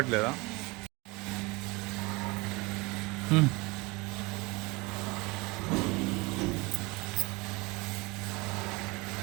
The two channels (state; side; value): quieter; left; 25.2 dB